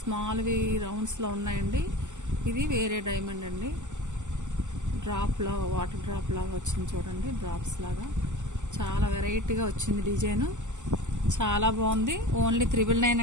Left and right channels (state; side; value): late; left; 0.84 ms